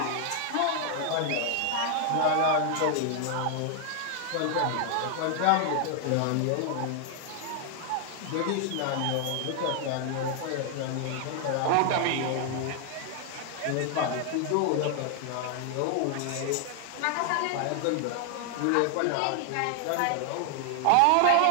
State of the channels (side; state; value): both; different; correlation 0.00